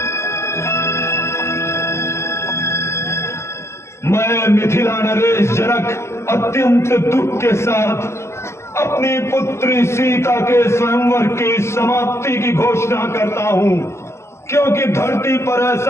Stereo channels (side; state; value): right; late; 0.13 ms